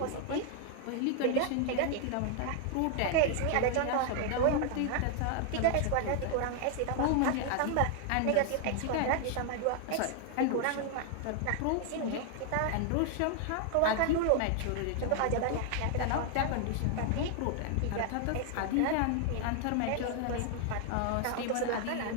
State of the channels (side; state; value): both; different; correlation 0.00